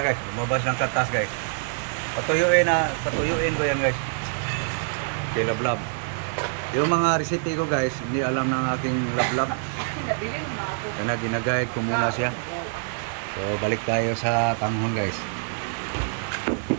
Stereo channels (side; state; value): left; silent; digital silence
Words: guys, lumabas ng katas guys. Patuyuin ko yan guys. Okay, lablab. Yung mga recipe ko guys, hindi alam ng aking lablab. Kaya ginagayad ko muna siya. So balik tayo sa tanghon guys.